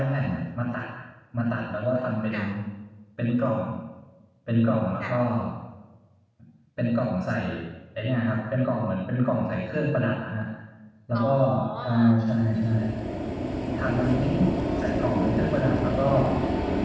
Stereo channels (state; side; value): identical; both; correlation 1.00